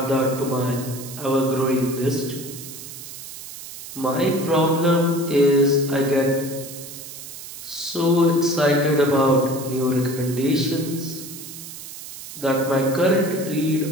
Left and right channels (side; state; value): right; noise; hiss, 12 dB below the sound